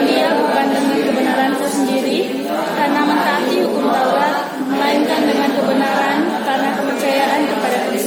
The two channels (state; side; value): identical; both; correlation 1.00